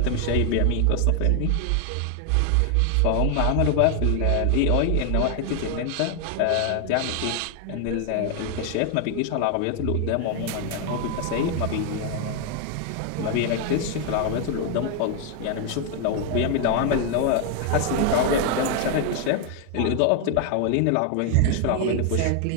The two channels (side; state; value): both; different; correlation 0.00